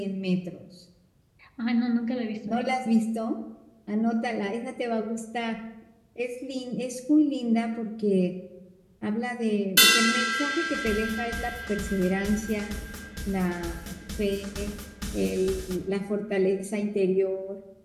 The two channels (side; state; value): both; identical; correlation 1.00